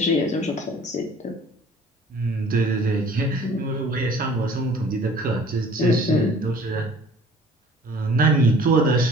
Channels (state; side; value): normal; both; correlation 0.50